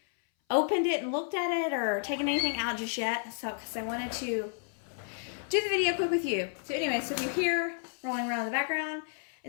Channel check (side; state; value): right; silent; 57 dB below the other